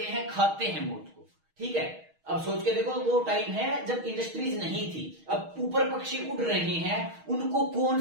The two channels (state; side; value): late; left; 6.3 ms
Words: हैं, खाते हैं मोथ को। ठीक है, अब सोच के देखो, वो टाइम है जब इंडस्ट्रीज नहीं थी। अब ऊपर पक्षी उड़ रहे हैं, उनको